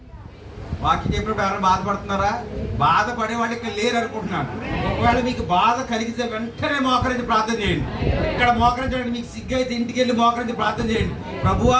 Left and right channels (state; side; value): identical; both; correlation 1.00